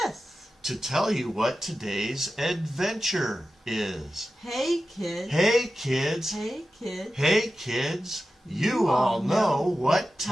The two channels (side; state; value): both; normal; correlation 0.93